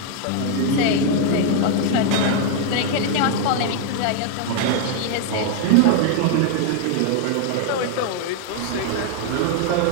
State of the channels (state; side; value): different; both; correlation 0.00